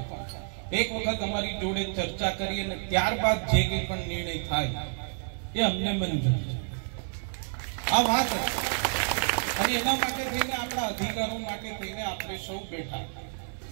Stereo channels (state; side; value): silent; left; digital silence